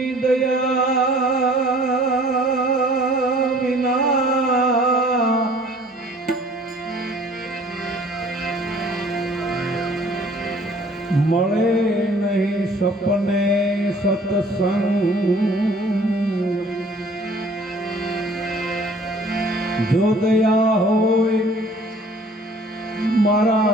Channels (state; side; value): normal; both; correlation 0.54